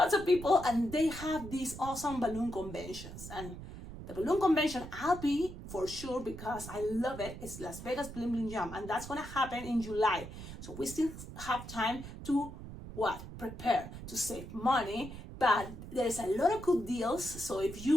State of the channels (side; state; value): right; noise; rumble, 11 dB below the sound